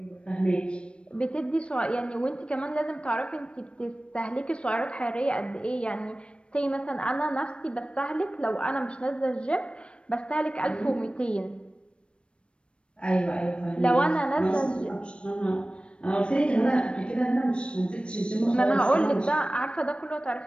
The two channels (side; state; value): right; late; 0.058 ms